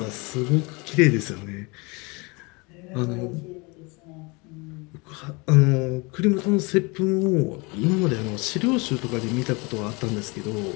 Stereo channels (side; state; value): right; quieter; 27.7 dB